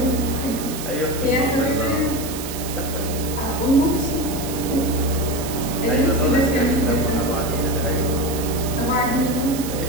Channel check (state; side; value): noise; right; hiss, 9 dB below the sound